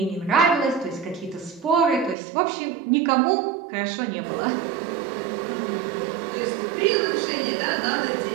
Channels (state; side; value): drops out; left; at 2.1 s